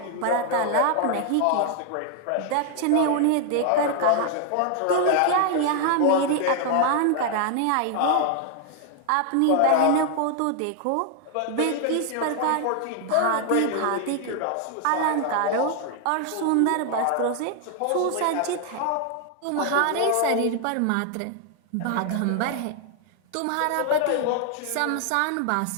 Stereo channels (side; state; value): both; different; correlation 0.00